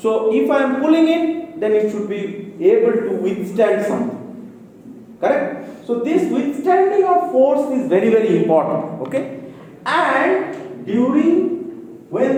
if I am pulling it, then it should be able to withstand something, correct? So this withstanding of force is very, very important, okay? And during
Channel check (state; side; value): identical; both; correlation 1.00